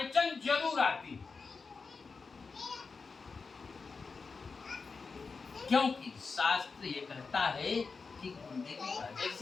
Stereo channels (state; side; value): quieter; right; 4.7 dB